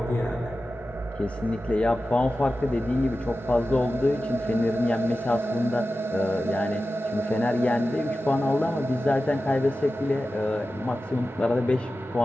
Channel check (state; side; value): normal; both; correlation 0.93